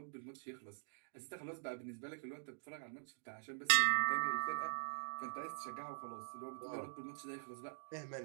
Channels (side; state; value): left; silent; digital silence